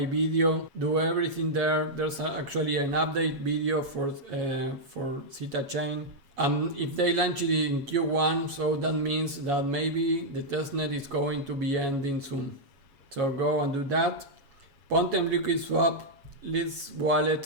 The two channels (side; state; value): left; late; 7.2 ms